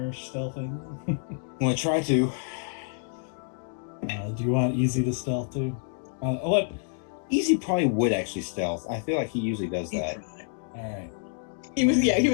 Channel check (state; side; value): silent; right; 59 dB below the other